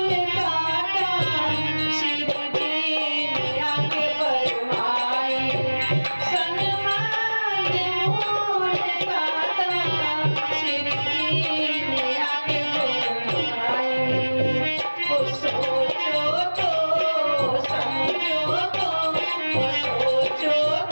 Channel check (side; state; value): both; inverted; correlation -1.00